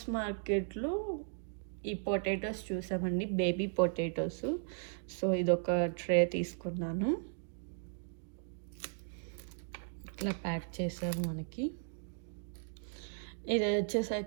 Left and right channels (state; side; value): silent; left; digital silence